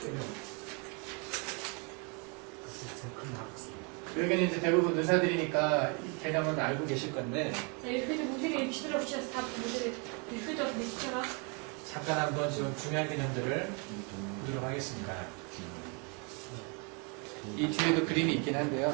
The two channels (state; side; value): quieter; left; 34.3 dB